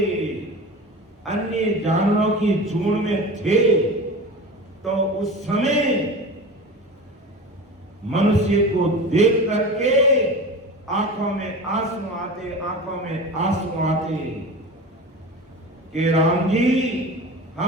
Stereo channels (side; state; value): both; normal; correlation 0.32